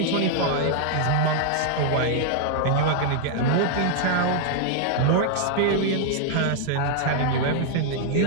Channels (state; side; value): different; both; correlation -0.01